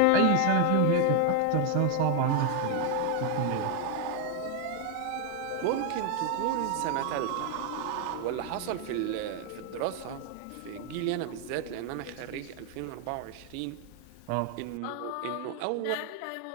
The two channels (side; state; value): both; different; correlation 0.01